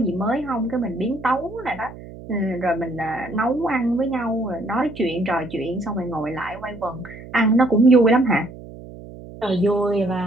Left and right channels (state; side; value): noise; right; hum, 15 dB below the sound